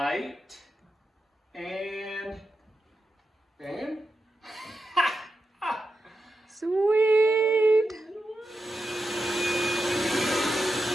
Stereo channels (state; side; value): normal; both; correlation 0.88